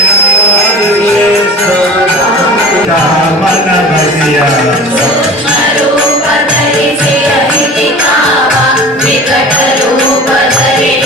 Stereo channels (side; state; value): both; normal; correlation 0.38